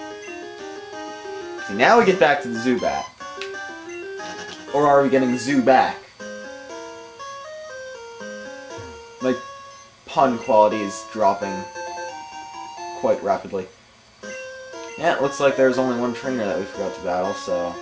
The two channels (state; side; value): identical; both; correlation 1.00